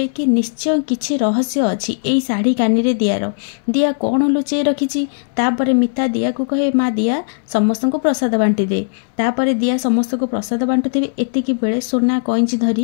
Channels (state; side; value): silent; right; 65 dB below the other